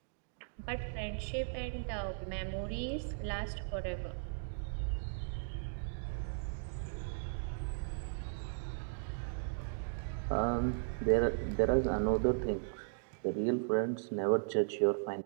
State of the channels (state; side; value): silent; left; digital silence